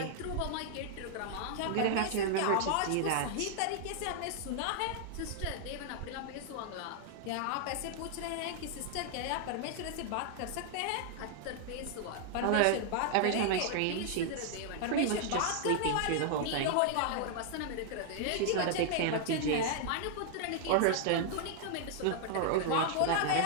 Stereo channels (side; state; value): both; different; correlation -0.01